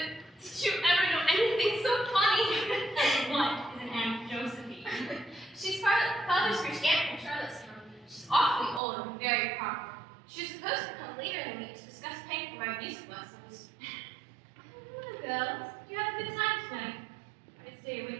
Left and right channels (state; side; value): drops out; left; at 8.8 s